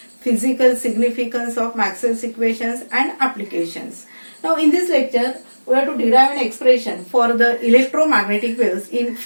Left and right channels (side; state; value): both; inverted; correlation -1.00